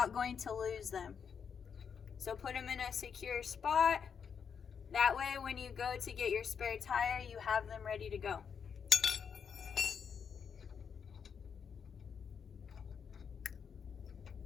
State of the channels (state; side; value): quieter; right; 6.8 dB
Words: going to lose them. So put them in a secure spot. That way when you go to get your spare tire, you have them ready to go.